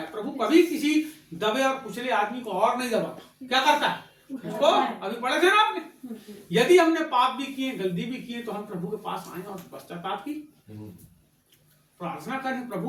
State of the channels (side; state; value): both; identical; correlation 1.00